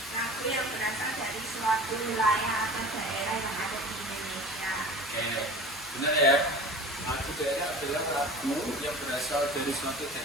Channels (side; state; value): both; normal; correlation 0.38